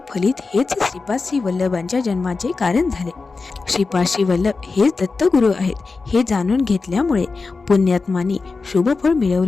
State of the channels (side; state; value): right; quieter; 4.2 dB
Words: फलित हेच श्रीपाद श्री वल्लभांच्या जन्माचे कारण झाले. श्रीपाद श्री वल्लभ हेच दत्तगुरू आहेत हे जाणून घेतल्यामुळे पुण्यात्मांनी शुभफळ